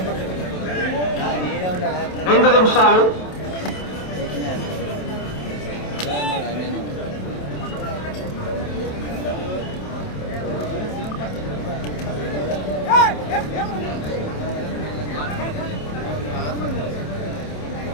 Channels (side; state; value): right; late; 27 ms